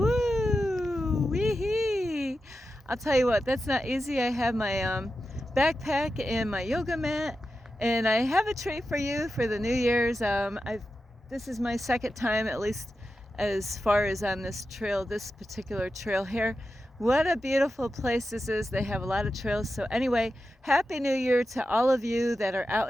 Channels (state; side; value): normal; both; correlation 0.91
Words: Wee-hee! I'll tell you what, that's not easy. I have my backpack and my yoga mat, and I have a treat for you for the New Year's. This is my second time, at least as far as on this trail, this particular trail here. What a beautiful place this is. They have a lot of trails. So anyway, Happy New Year to all of you that are